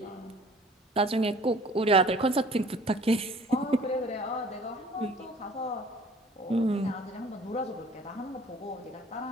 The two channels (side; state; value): both; normal; correlation 0.51